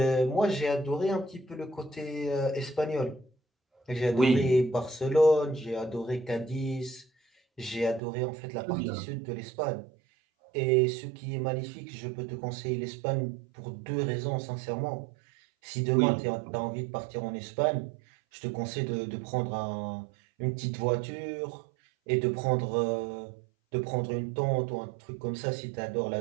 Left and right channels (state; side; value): drops out; left; at 8.0 s